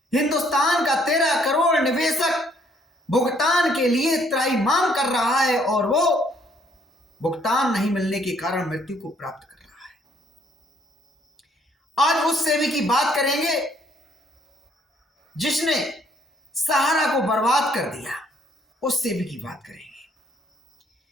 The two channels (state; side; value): normal; both; correlation 0.65